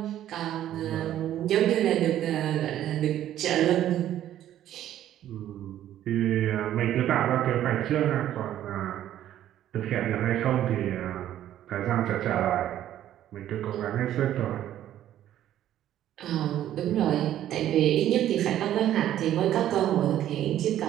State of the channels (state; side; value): quieter; left; 12.0 dB